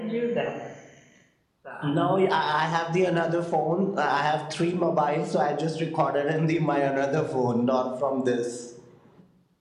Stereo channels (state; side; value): identical; both; correlation 1.00